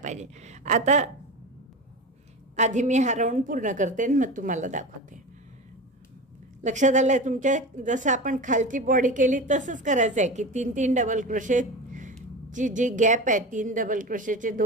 आता आधी मी हा राऊंड पूर्ण करते आणि मग तुम्हाला दाखवते. लक्षात आलं आहे तुमच्या? जसं आपण खालची बॉडी केली तसंच करायचं आहे की 3 डबल क्रोशेची जी गॅप आहे, 3 डबल क्रोशेचे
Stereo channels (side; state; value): both; normal; correlation 0.27